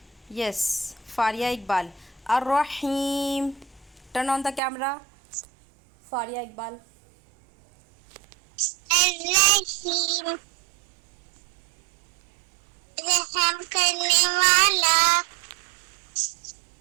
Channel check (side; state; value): left; drops out; at 4.6 s